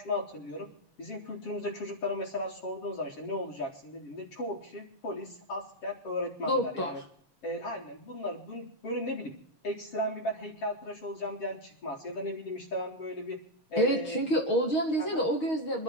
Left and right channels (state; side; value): late; right; 6.4 ms